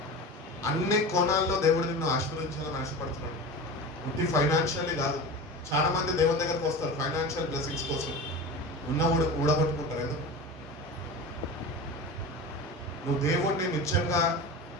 అన్ని కోణాల్లో దేవుడు నిన్ను ఆశీర్వదించాలని ఆశపడుతున్నాడు. ఇది ఫైనాన్షియల్లీ కాదు. చాలా మంది దేవుని దగ్గరకు వస్తారు ఫైనాన్షియల్ బ్లెస్సింగ్స్ కోసం, ఉన్న ఊడగొట్టుకుంటారు. ఏదో నువ్వు దేవుణ్ణి నిత్యంగా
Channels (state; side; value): normal; both; correlation 0.30